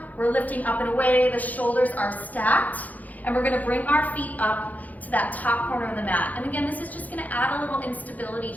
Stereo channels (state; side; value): late; right; 0.079 ms